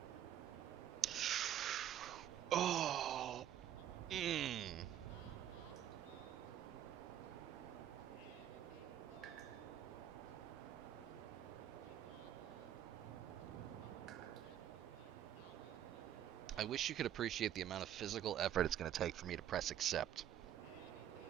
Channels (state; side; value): quieter; left; 11.0 dB